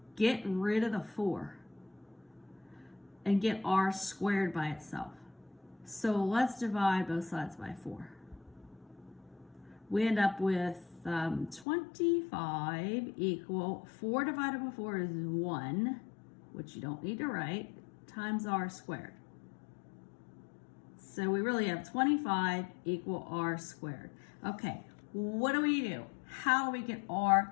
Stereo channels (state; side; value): drops out; right; at 11.7 s